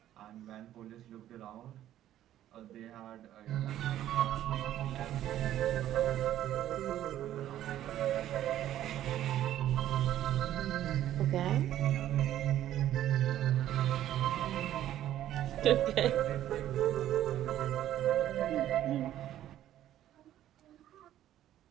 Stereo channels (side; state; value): left; quieter; 12.4 dB